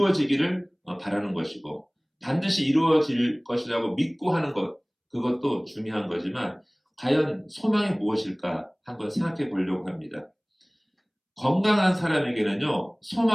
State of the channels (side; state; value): both; identical; correlation 1.00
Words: 바라는 것이고 반드시 이루어질 것이라고 믿고 하는 것, 그것도 중요한 거지만 과연 소망이 무엇일까 한번 생각해 보려고 합니다. 건강한 사람에게는요